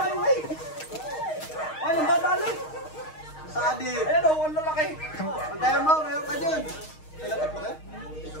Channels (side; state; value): right; late; 6.4 ms